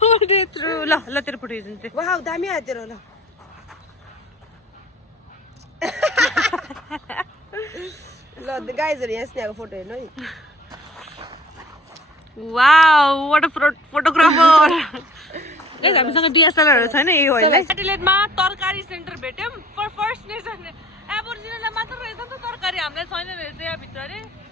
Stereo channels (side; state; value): both; normal; correlation 0.50